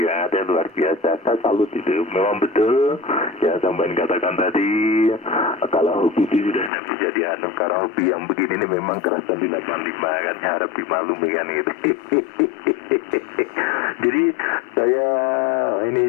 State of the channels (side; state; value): right; drops out; at 6.7 s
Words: yang ada, luar biasa. Saya salut itu, memang betul yang sampai katakan tadi, kalau hobi itu sudah bisa dianu, karena hobi yang begini ini memang kerasan di 85 kan, harap dimaklumi kan gitu. Jadi saya